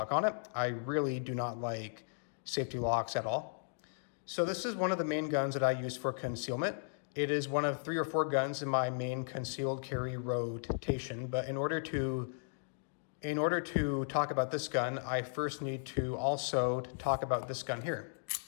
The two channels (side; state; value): right; silent; digital silence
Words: on it. I really do not like safety locks at all. So this is one of the main guns that I use for concealment. It is one of 3 or 4 guns in my main concealed carry rotation, but in order to talk about this gun, I first need to also talk about this gun here.